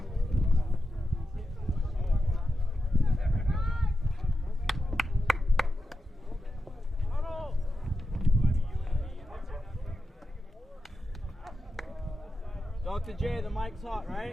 Dr. J, the mic's hot,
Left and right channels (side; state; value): both; normal; correlation 0.89